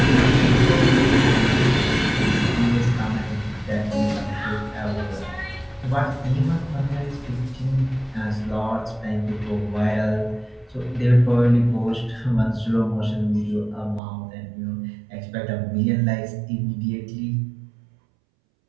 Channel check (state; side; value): drops out; left; at 14.0 s